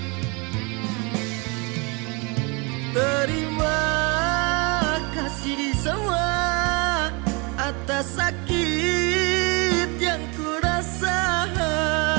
Terima kasih di semua atas sakit yang kurasa.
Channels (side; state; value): left; quieter; 29.9 dB